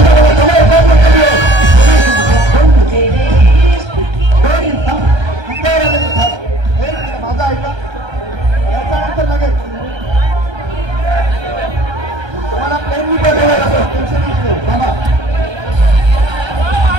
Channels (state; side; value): late; left; 1.3 ms